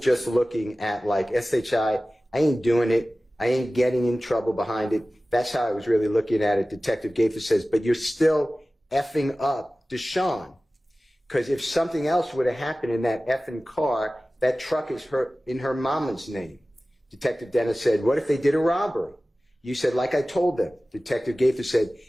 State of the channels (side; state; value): both; normal; correlation 0.96